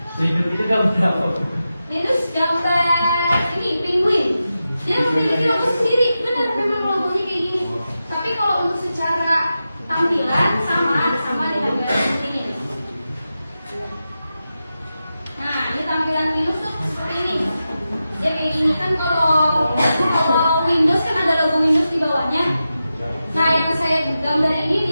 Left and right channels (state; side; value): inverted; both; correlation -0.91